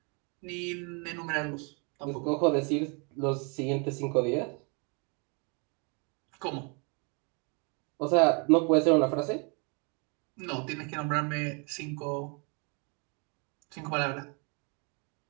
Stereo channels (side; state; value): left; quieter; 34.4 dB